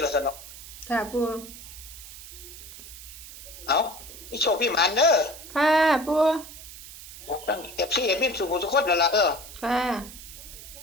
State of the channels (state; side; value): noise; right; hiss, 14 dB below the sound